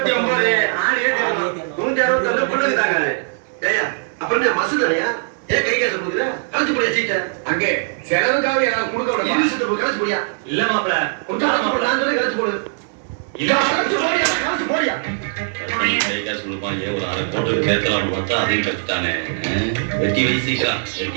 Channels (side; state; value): left; silent; digital silence